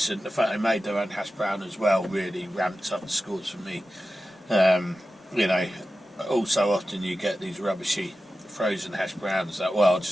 The fact they made their own hash brown as well really ramped up the scores for me. You know, also often you get these rubbishy frozen hash browns that, well, I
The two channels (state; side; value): normal; both; correlation 0.94